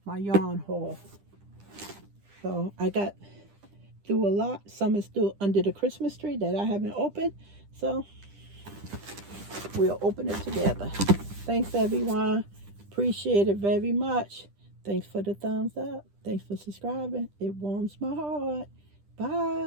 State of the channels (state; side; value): late; left; 10 ms